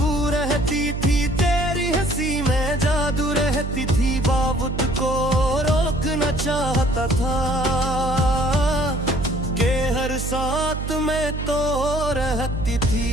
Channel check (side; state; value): right; noise; hum, 4 dB below the sound